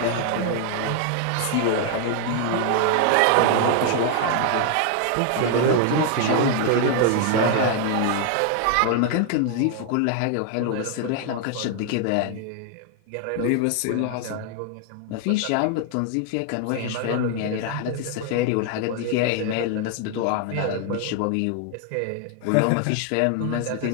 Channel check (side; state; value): both; different; correlation 0.00